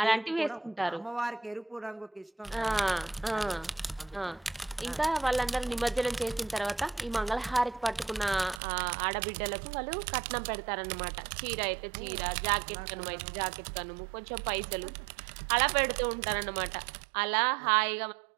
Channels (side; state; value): left; drops out; at 8.6 s